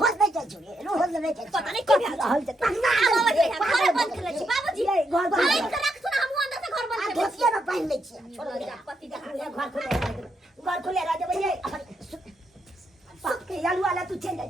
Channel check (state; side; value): normal; both; correlation 0.80